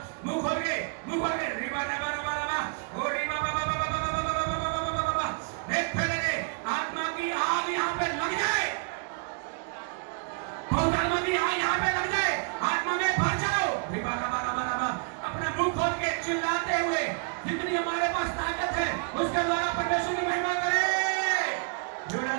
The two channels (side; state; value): left; quieter; 35.6 dB